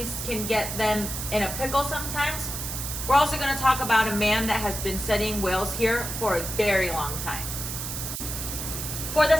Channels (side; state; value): right; noise; hiss, 5 dB below the sound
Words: can get them in a pickle sometimes, we're also going to talk about a man that has been studying whales here for a very long time. For